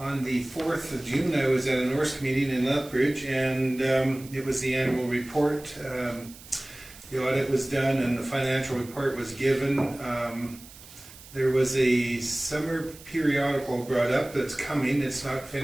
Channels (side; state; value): right; noise; hiss, 19 dB below the sound